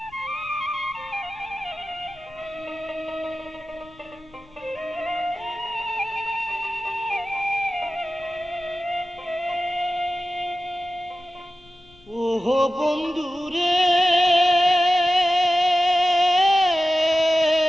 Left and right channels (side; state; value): left; noise; rumble, 27 dB below the sound